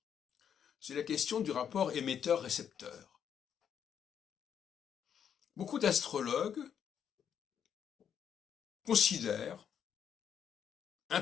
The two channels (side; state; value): right; quieter; 8.3 dB